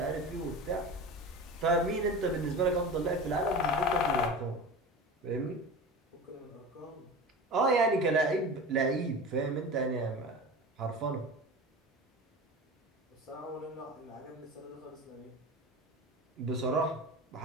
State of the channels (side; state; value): both; normal; correlation 0.31